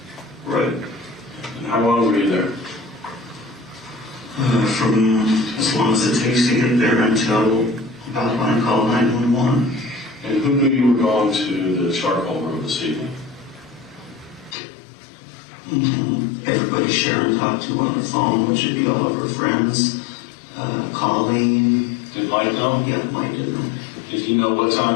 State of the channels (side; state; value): right; drops out; at 14.6 s